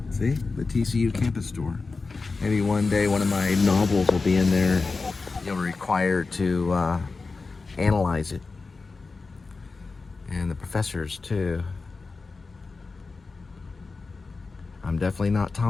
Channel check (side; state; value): right; quieter; 4.1 dB